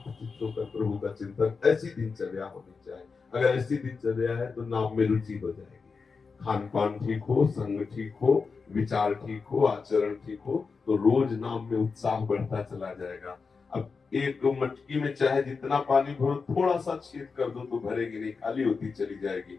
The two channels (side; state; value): right; quieter; 4.9 dB